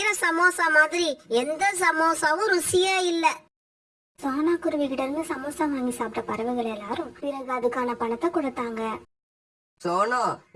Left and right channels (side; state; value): both; identical; correlation 1.00